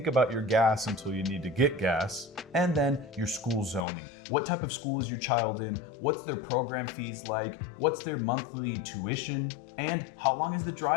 about your gas until you need to get gas. And then your school zoning. What type of school is your child in? What's their program fees like? What's their monthly tuition? And how long is the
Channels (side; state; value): right; drops out; at 3.9 s